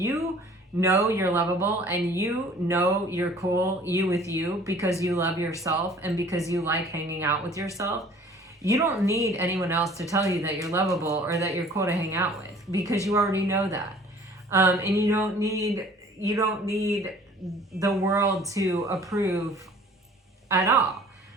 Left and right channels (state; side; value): normal; both; correlation 0.51